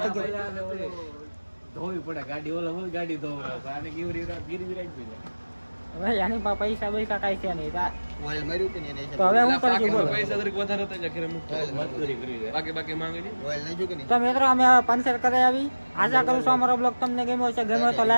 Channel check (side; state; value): both; inverted; correlation -1.00